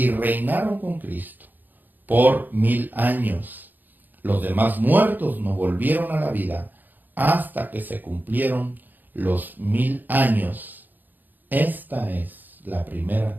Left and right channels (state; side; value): late; left; 0.087 ms